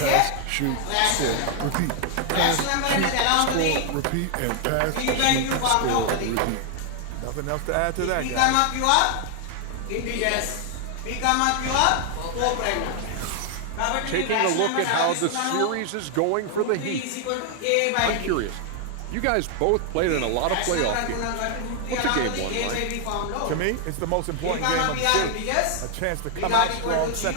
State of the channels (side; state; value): both; different; correlation 0.00